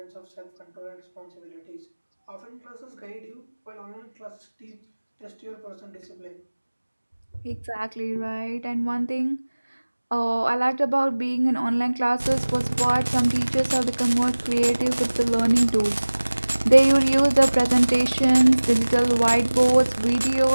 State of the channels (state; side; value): inverted; both; correlation -1.00